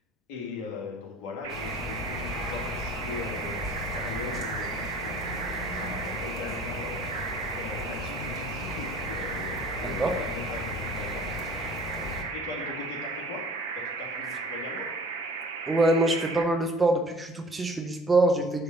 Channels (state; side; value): normal; both; correlation 0.47